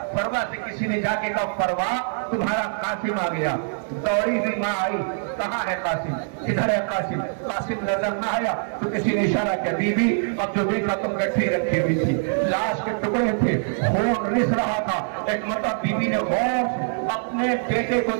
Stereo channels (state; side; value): silent; left; digital silence